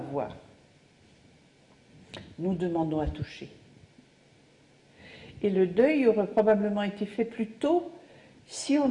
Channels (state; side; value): identical; both; correlation 1.00